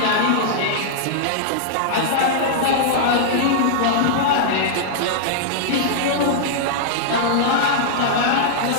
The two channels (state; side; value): different; both; correlation -0.01